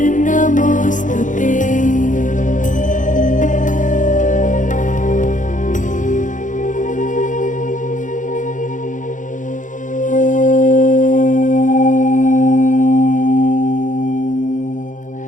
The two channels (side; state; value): right; late; 0.37 ms